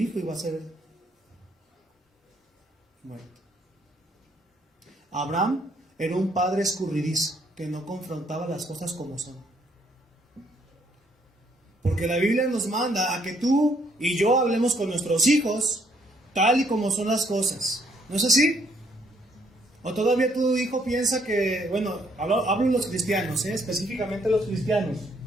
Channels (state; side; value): normal; both; correlation 0.68